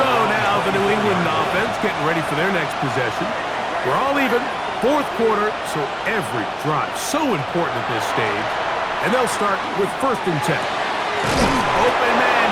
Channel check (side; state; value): both; identical; correlation 1.00